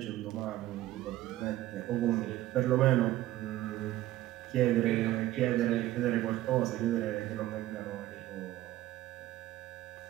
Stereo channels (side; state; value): left; quieter; 15.2 dB